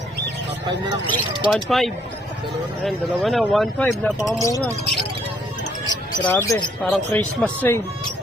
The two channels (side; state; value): both; normal; correlation 0.67